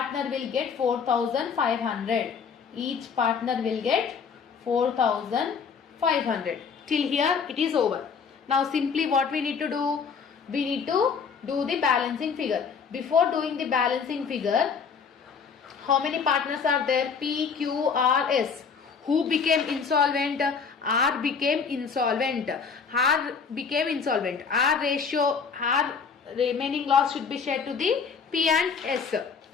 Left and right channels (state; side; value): quieter; right; 5.9 dB